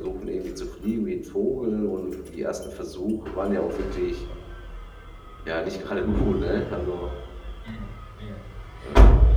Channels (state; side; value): identical; both; correlation 1.00